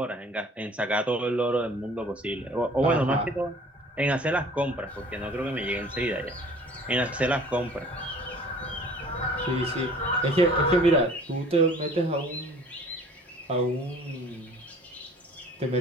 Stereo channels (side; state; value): both; normal; correlation 0.50